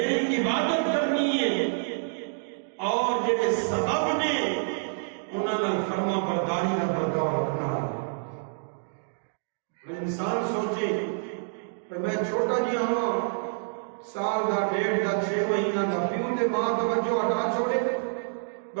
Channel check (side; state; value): left; silent; digital silence